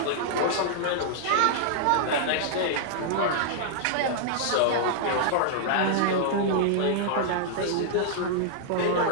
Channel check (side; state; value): both; different; correlation -0.01